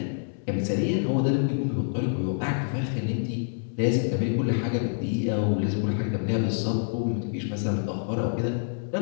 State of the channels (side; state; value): right; silent; digital silence